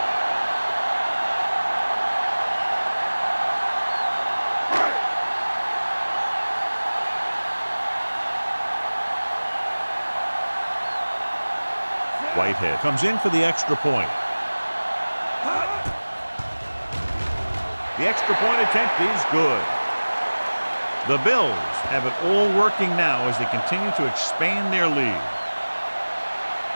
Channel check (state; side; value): inverted; both; correlation -1.00